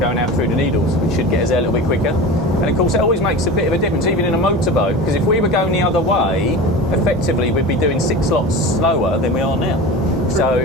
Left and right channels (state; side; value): normal; both; correlation 0.31